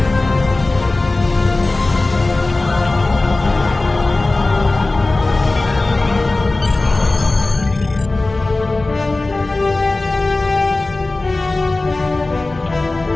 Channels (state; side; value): quieter; right; 3.1 dB